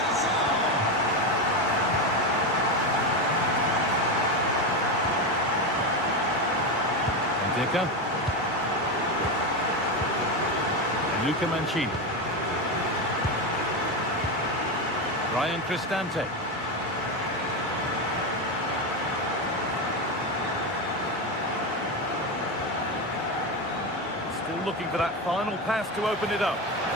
Indica. And Luca Mancini. Ryan Cristante. Still looking for that final pass to open it up.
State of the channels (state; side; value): normal; both; correlation 0.14